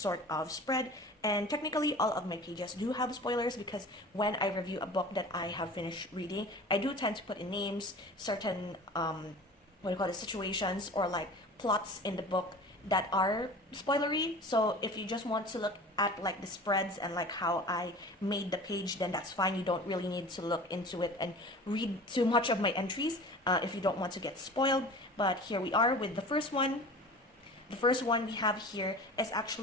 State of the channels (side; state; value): both; normal; correlation 0.39